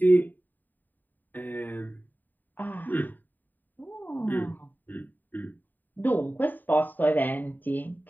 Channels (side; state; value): right; late; 0.088 ms